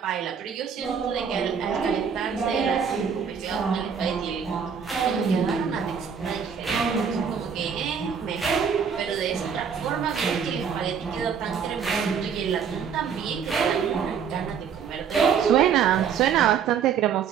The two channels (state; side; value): quieter; left; 7.1 dB